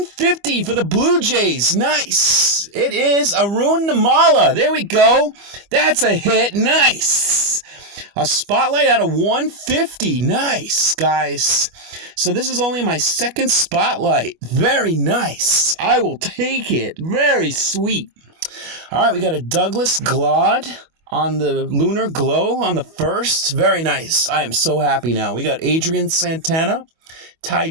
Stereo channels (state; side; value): late; left; 25 ms